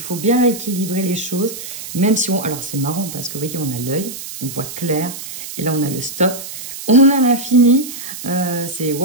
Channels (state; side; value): noise; right; hiss, 10 dB below the sound